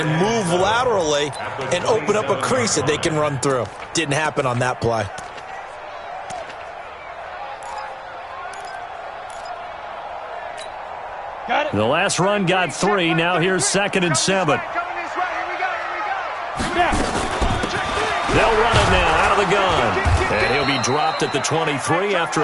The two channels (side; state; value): both; identical; correlation 1.00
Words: move laterally and open up a crease that they can run through. Didn't happen on that play. The last run got 3. Now here's 2nd and 7. They'll run it now out of the gun. And he'll be dropped at the 23 after